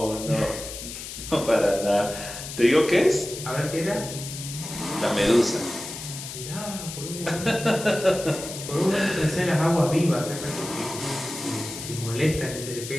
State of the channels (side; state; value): left; noise; hiss, 9 dB below the sound